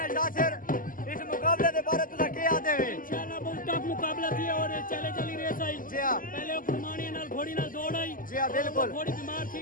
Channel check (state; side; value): late; right; 0.40 ms